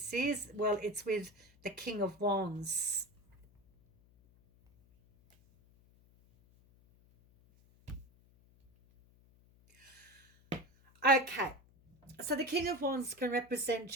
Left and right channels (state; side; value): noise; left; hum, 29 dB below the sound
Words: is. Well, it's with the King of Wands. Okay, so the King of Wands can represent